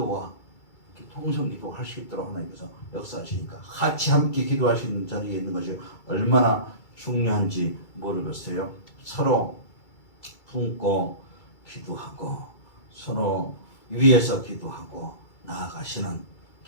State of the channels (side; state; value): right; late; 2.3 ms